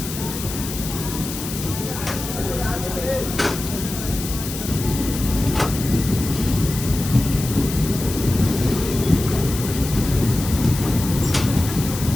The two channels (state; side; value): noise; left; hiss, 8 dB below the sound